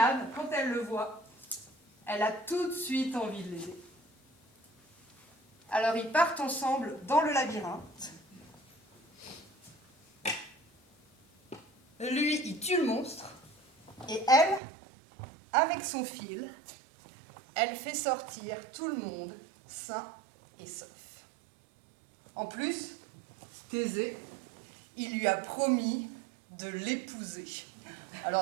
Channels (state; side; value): drops out; left; at 14.6 s